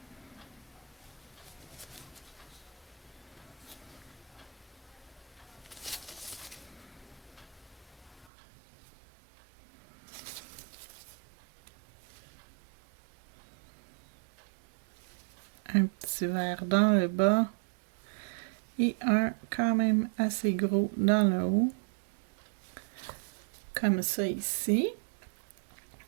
Un petit vert dans le bas. Et un quand même assez gros dans le haut. Comme ça ici.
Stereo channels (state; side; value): drops out; left; at 8.3 s